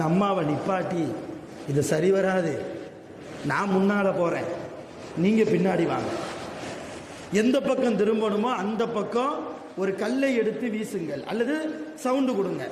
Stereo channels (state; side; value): identical; both; correlation 1.00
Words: அம்மாவை நிப்பாட்டி, இது சரி வராது, நான் முன்னால் போகிறேன், நீங்கள் பின்னாடி வாங்க, எந்த பக்கம் திரும்பணுமோ அந்த பக்கம் ஒரு கல்லை எடுத்து வீசுங்கள், அல்லது சவுண்டு கொடுங்க,